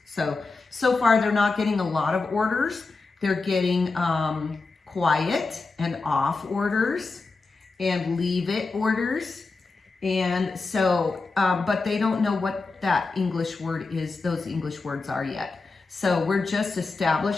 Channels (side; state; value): right; quieter; 3.9 dB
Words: So far they're not getting a lot of orders. They're getting quiet and off orders and leave it orders. And so, but they don't know what that English word is, those English words are yet. So we're just